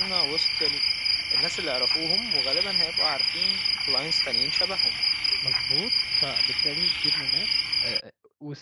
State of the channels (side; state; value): both; identical; correlation 1.00